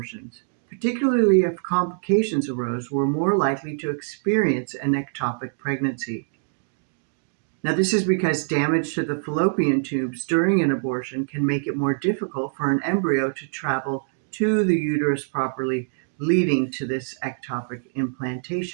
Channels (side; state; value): left; silent; digital silence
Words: particularly if complications arose, were more likely to experience an ectopic pregnancy. Now, this is because damage to the fallopian tubes during an abortion can make it more difficult for an embryo to travel to the uterus properly, leading to this ectopic